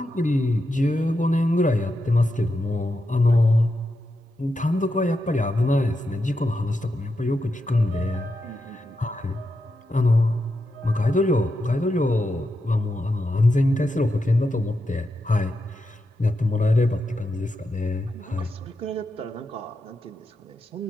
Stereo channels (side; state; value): both; normal; correlation 0.86